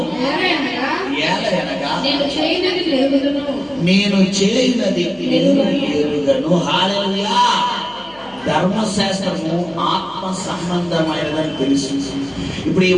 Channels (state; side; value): noise; left; hum, 27 dB below the sound